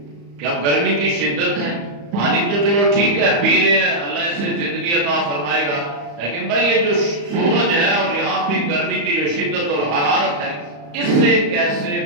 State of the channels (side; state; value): left; late; 35 ms